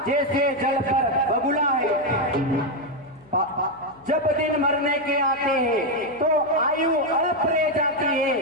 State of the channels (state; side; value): noise; left; hum, 27 dB below the sound